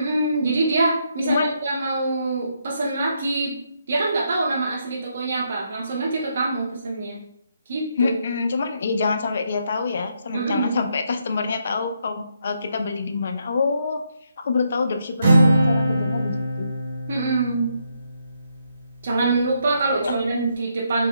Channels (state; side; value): inverted; both; correlation -0.77